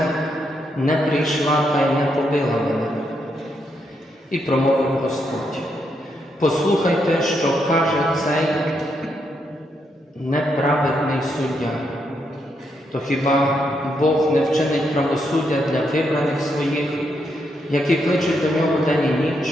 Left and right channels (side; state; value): both; normal; correlation 0.79